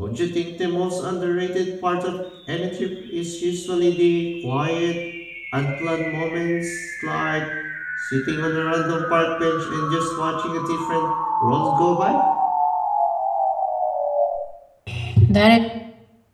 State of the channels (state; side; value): identical; both; correlation 1.00